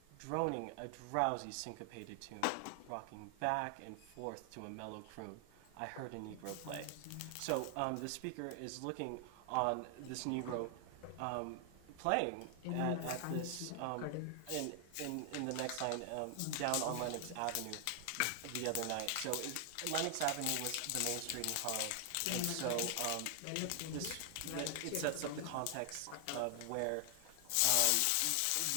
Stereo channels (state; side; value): different; both; correlation 0.00